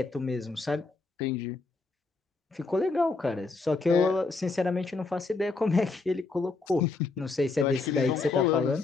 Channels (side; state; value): right; quieter; 3.8 dB